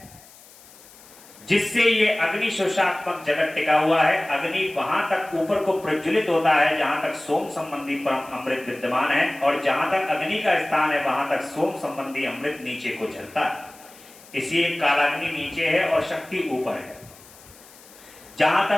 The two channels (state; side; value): noise; left; hiss, 23 dB below the sound